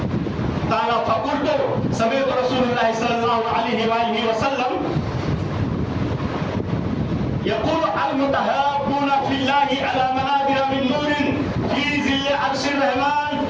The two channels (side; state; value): both; identical; correlation 1.00